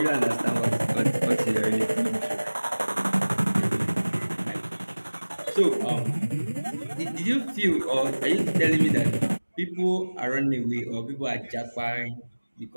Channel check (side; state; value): both; inverted; correlation -1.00